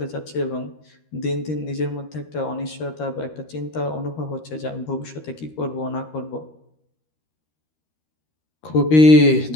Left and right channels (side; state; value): right; late; 13 ms